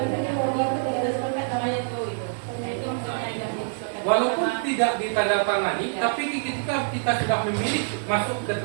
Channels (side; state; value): left; silent; digital silence